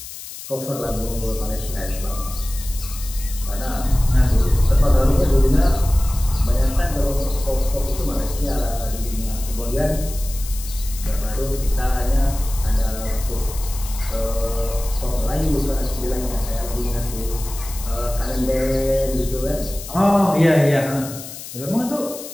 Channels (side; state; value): left; noise; hiss, 12 dB below the sound